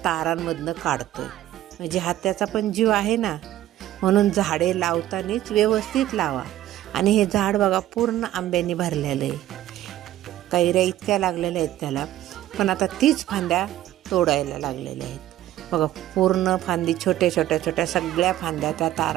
तारांमधनं काढतोय. म्हणजे हा त्याचा पण जीव आहे ना. म्हणून झाडे लावतानाच व्यवस्थित लावा. आणि हे झाड बघा पूर्ण आंब्याने भरलेलं आहे, कैऱ्या इतक्या लागलेल्या आहेत त्याला, पण आता तीच फांद्या तोडायला लागलेल्या आहेत. बघा पूर्ण फांदी छोट्या छोट्या छोट्या सगळ्या फांद्या त्या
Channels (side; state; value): left; quieter; 13.6 dB